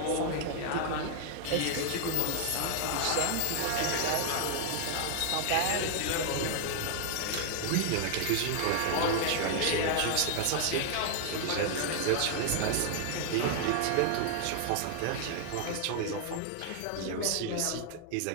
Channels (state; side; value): different; both; correlation 0.00